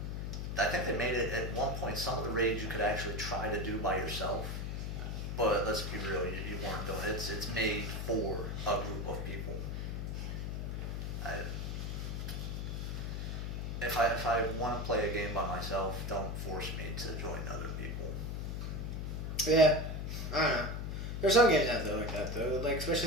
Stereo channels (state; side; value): noise; left; hum, 3 dB below the sound